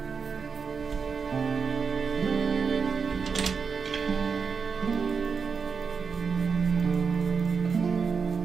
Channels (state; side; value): quieter; left; 5.6 dB